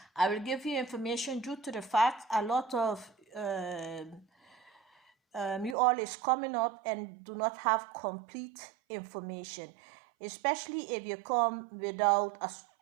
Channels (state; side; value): drops out; left; at 5.8 s